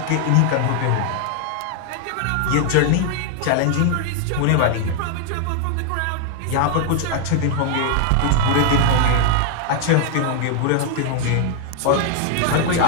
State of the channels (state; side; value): different; both; correlation 0.00